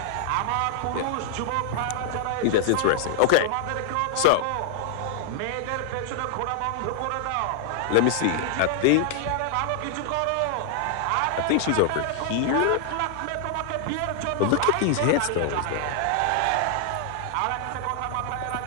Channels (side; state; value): both; different; correlation 0.00